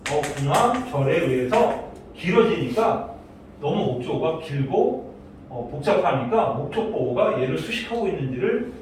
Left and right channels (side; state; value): both; identical; correlation 1.00